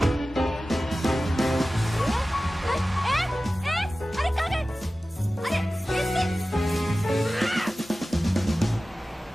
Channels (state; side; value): normal; both; correlation 0.96